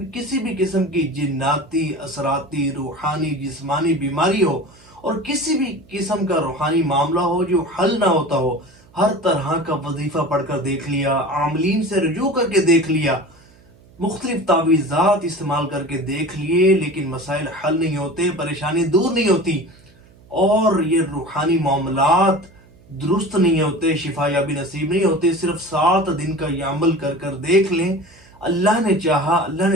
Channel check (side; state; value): right; noise; hum, 27 dB below the sound